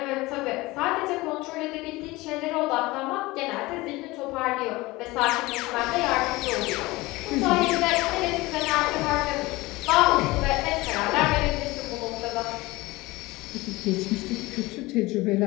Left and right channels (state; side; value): quieter; right; 20.8 dB